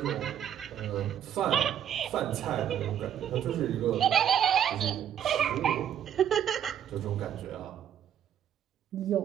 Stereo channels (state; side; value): quieter; left; 9.7 dB